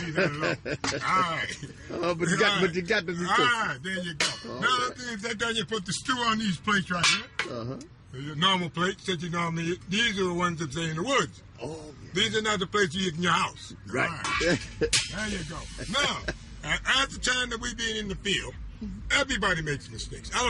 leave that alone. All right. But you got the All right, there you go. Now, if that's done, you put the stew on these plates right here. Your normal plates that you normally eat. These are the ones that stay in the woods. Oh. These are not the plates you eat in your house. Right. There you go. Now, at the time that we being in the field, everybody makes mistakes. I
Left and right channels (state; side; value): identical; both; correlation 1.00